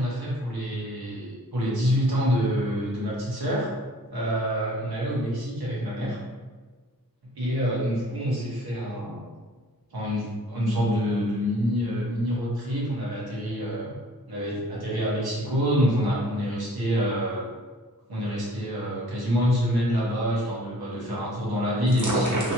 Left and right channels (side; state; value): both; normal; correlation 0.54